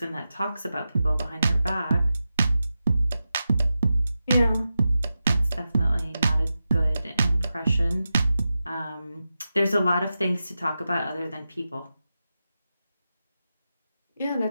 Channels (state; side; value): inverted; both; correlation -0.91